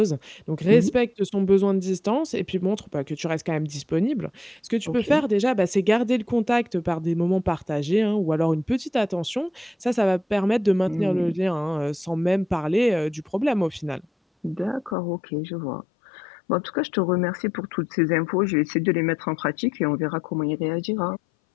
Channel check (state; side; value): drops out; right; at 15.0 s